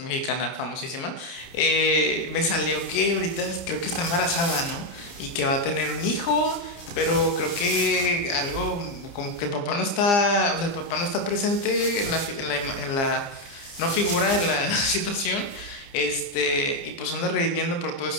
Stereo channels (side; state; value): right; late; 30 ms